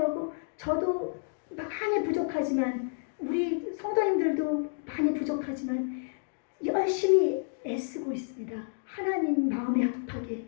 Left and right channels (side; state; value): right; silent; digital silence